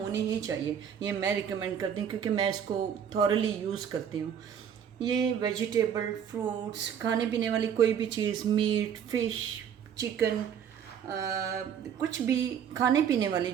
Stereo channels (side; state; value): left; quieter; 8.3 dB